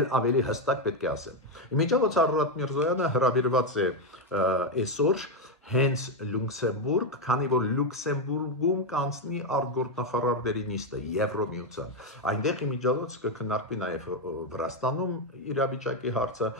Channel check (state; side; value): normal; both; correlation 0.05